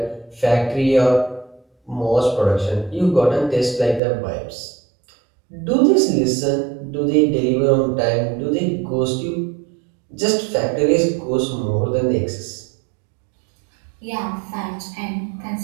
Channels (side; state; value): left; drops out; at 4.0 s